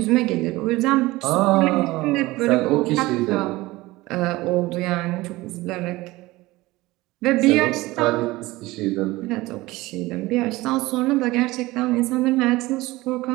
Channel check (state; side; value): quieter; left; 19.7 dB